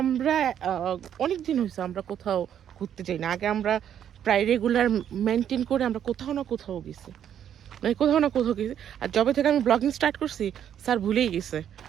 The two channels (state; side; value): quieter; left; 9.6 dB